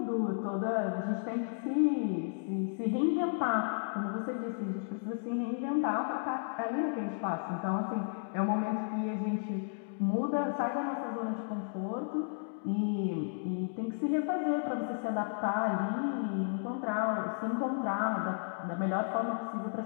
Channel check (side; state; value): right; silent; digital silence